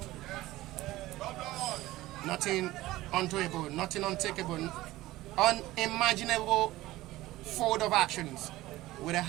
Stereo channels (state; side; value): quieter; left; 17.3 dB